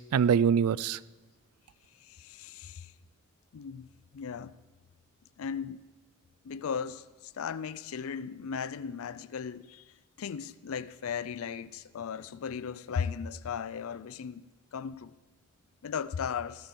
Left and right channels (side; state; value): both; normal; correlation 0.08